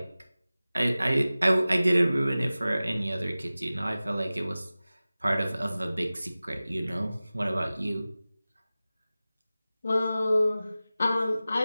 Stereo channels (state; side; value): inverted; both; correlation -0.97